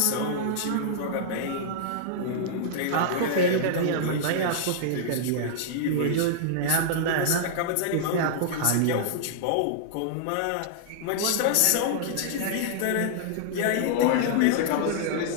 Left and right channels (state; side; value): different; both; correlation -0.01